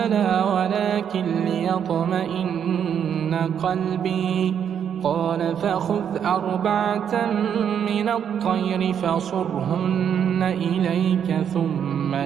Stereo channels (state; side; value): quieter; left; 8.4 dB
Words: ولكن ليطمئن قلبي قال فخذ 4 من الطير فصرهن إليك ثم